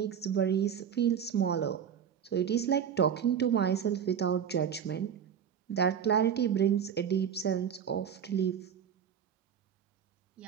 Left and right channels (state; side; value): quieter; left; 8.2 dB